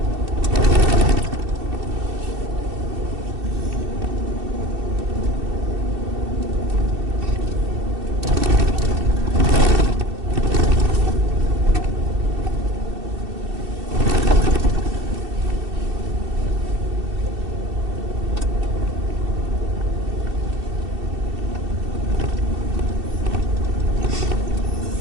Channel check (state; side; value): late; left; 2.7 ms